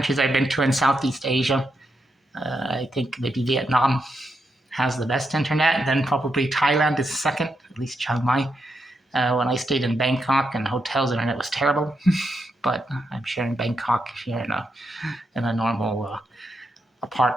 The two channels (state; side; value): normal; both; correlation 0.83